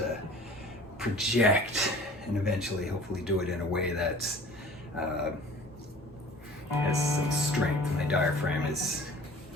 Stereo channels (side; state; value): both; normal; correlation 0.45